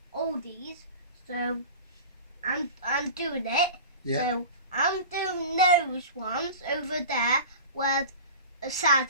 all these, so I'm doing it. Yeah. So I'm doing those ones over there where the sad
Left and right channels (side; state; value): both; inverted; correlation -0.35